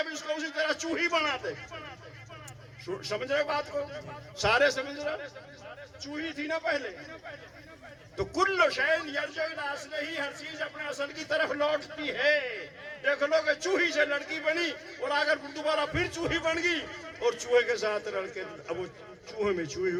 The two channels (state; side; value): identical; both; correlation 1.00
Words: اس کو اسی طرح چوہی بنا دے. سمجھ رہے بات کو, سارے سمجھ رہے, چوہی تھی نا پہلے. تو کل شیء یرجع الی اصلہ, ہر چیز اپنے اصل کی طرف لوٹتی ہے. دیکھ لو کہ چوہی سے لڑکی بنی اور اگر دوبارہ پھر چوہی بن گئی اور چوہے کے ساتھ لڑکے, اب وہ چوہے میں چوہی